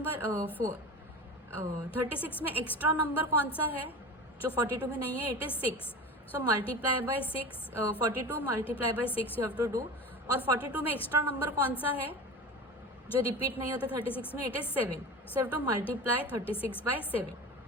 36 में एक्स्ट्रा नंबर कौन सा है जो 42 में नहीं है? It is 6. So multiply by 6, 42 multiply by 6 you have to do. और 42 में एक्स्ट्रा नंबर कौन सा है जो रिपीट नहीं होता 36 में? It is 7. So have to multiply 36 by 7.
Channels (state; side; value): normal; both; correlation 0.31